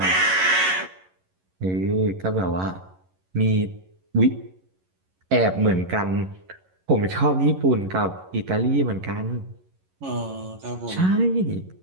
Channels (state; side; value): late; left; 11 ms